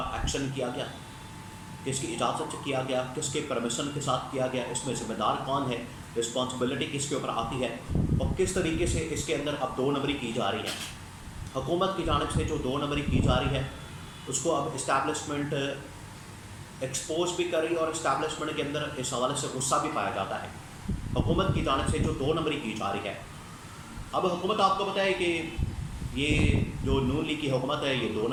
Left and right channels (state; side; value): identical; both; correlation 1.00